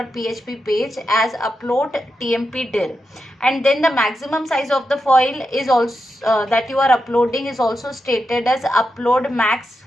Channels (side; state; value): both; normal; correlation 0.88